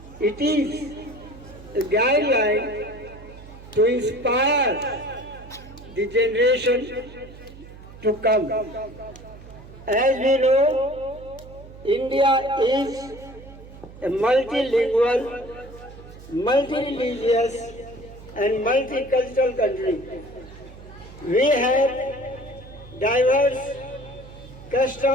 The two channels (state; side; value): noise; right; hum, 17 dB below the sound